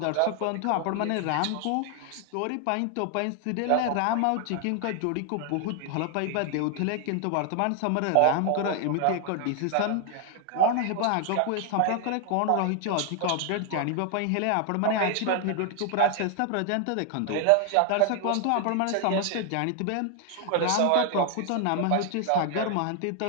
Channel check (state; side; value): different; both; correlation 0.00